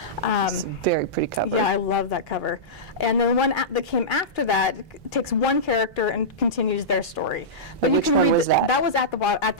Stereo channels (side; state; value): both; normal; correlation -0.16